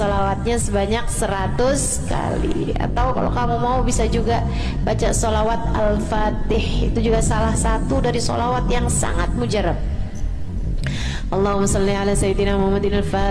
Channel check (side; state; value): both; identical; correlation 1.00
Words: sebanyak 100 kali. Atau kalau kamu mau bisa juga baca sholawat Al-Fatih, itu juga salah satu dari sholawat yang sangat mujarab. Allahumma salli ala sayyidina Muhammadin